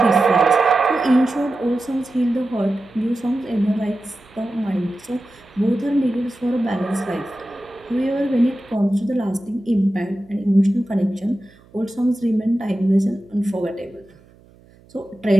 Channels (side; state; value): right; noise; hum, 28 dB below the sound